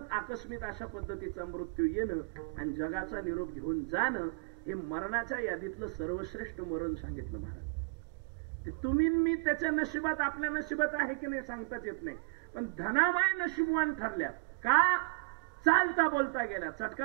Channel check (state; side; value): quieter; left; 37.6 dB